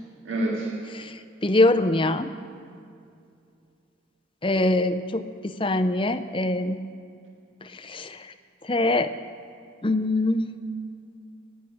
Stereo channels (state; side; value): normal; both; correlation 0.58